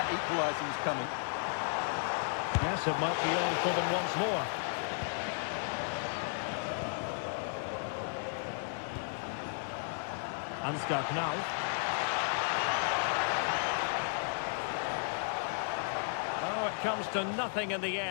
equaliser is coming. Yes, it might be on for them once more. Ansgar Knauff. Oh, it comes to nothing in the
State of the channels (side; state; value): right; silent; 55 dB below the other